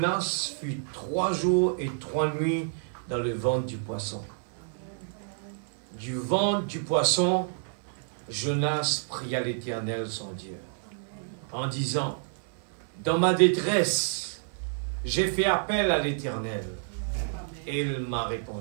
fut 3 jours et 3 nuits dans le ventre du poisson. Du ventre du poisson, Jonas pria l'Éternel son Dieu, en disant, dans ma détresse, j'ai fait appel à l'Éternel, et il m'a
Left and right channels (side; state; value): left; silent; 59 dB below the other